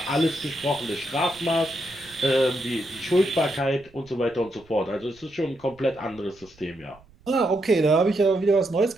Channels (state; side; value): noise; right; rumble, 27 dB below the sound